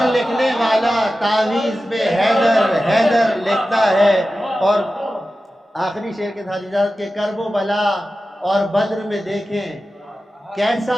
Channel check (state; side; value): normal; both; correlation 0.94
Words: لکھنے والا تعویذ پہ حیدر حیدر لکھتا ہے۔ اور آخری شعر کے ساتھ اجازت کے، کرب و بلا اور بدر میں دیکھیں کیسا